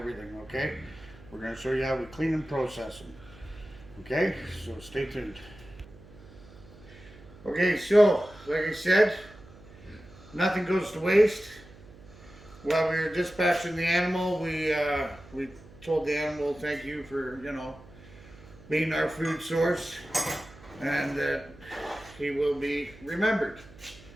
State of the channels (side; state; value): right; noise; hum, 21 dB below the sound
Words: okay? We're going to show you how we clean and process them, okay? So stay tuned. Okay, so like I said, nothing goes to waste. While we were dispatching the animal, we told the animal thank you for, being our food source, and that he will be remembered.